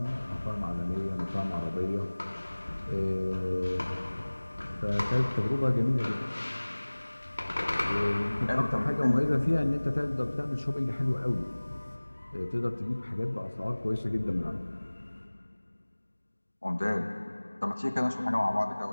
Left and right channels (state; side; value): inverted; both; correlation -1.00